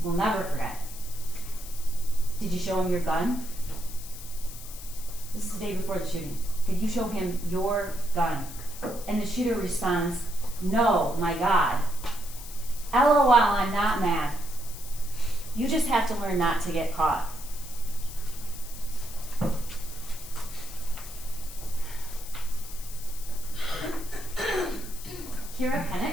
we'll never forget. Did you show him your gun? This is the day before the shooting. Did you show him your gun? And the shooter responds, no, my God. LOL, I'm not mad. You just have to learn not to get caught. Kira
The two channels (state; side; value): noise; left; hiss, 14 dB below the sound